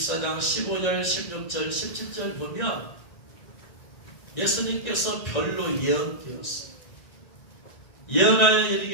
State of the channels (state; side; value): late; right; 1.9 ms